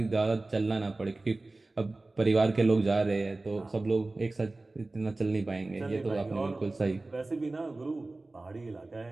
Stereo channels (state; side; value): quieter; left; 3.1 dB